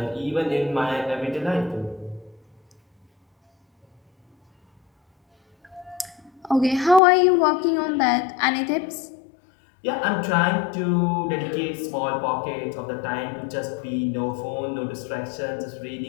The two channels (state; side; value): drops out; right; at 7.0 s